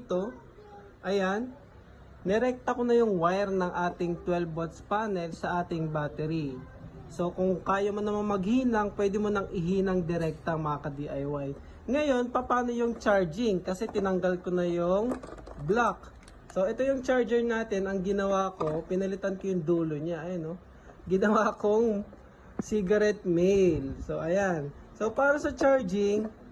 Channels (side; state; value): both; identical; correlation 1.00